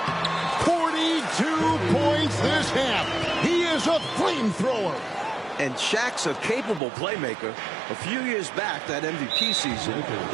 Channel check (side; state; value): left; drops out; at 6.8 s